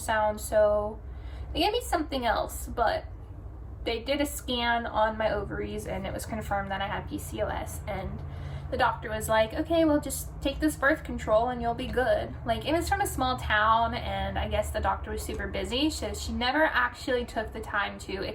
so they gave me something else. But they did a scan on my ovaries, and it was confirmed that I had PCOS. And the doctor was like, okay, well, just take this birth control and you'll be good. Like, it was from a small town, and I guess the doctor was super busy, so she never actually took the time to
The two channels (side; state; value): both; identical; correlation 1.00